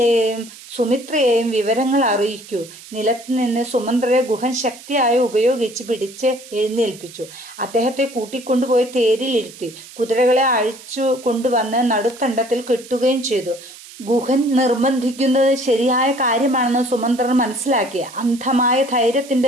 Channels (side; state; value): right; noise; hiss, 18 dB below the sound